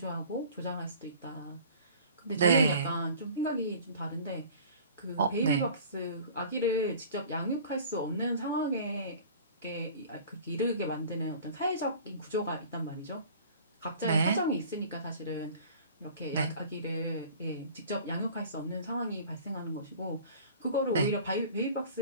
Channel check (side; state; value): both; inverted; correlation -0.45